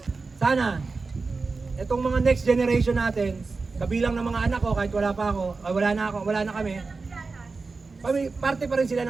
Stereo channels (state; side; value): quieter; left; 4.1 dB